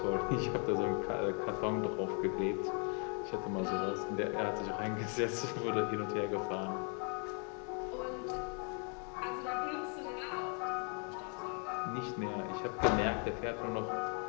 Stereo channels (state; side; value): quieter; right; 39.8 dB